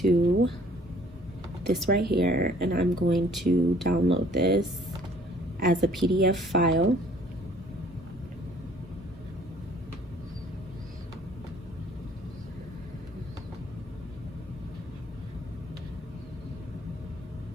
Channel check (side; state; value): both; normal; correlation 0.57